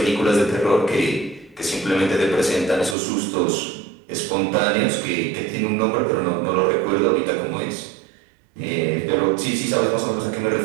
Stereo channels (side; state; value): left; drops out; at 3.0 s